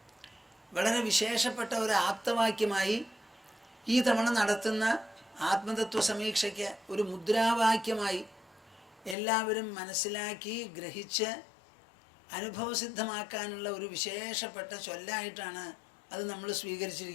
വളരെ വിശേഷപ്പെട്ട ഒരു ആപ്തവാക്യമായി ഈ തവണ നടത്തുന്ന ആത്മതത്വ സമീക്ഷയ്ക്ക് ഒരു മുദ്രാവാക്യമായി എല്ലാവരും മനസ്സിലാക്കി ഗ്രഹിച്ച് അനുഭവസിദ്ധമാക്കാനുള്ള ഒരു വിശേഷപ്പെട്ട ചൊല്ലായിട്ടാണ് അത് നമ്മൾ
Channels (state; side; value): drops out; right; at 9.2 s